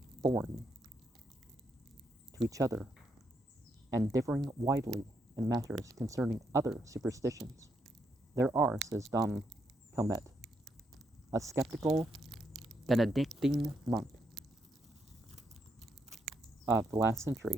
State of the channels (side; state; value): both; normal; correlation 0.78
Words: foreign to each other and differing widely in matters concerning other superstitions. There are, says Dom Calmet, a skeptical Benedictine monk of the last century,